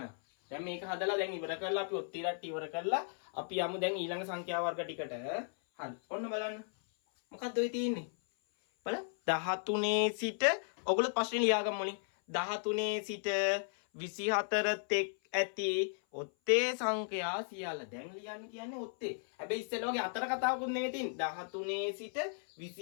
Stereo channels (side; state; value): right; silent; 54 dB below the other